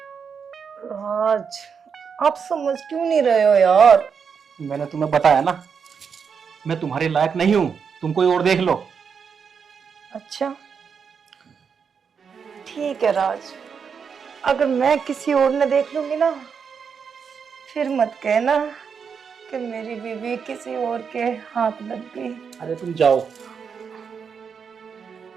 राज, आप समझ क्यों नहीं रहे हो यार? मैंने तुम्हें बताया ना, मैं तुम्हारे लायक नहीं हूँ। तुम कोई और देख लो। अच्छा ठीक है राज, अगर मैं किसी और ने देख लूंगी ना, फिर मत कहना कि मेरी बीवी किसी और के हाथ लग गई। अरे तुम जाओ।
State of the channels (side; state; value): left; quieter; 6.4 dB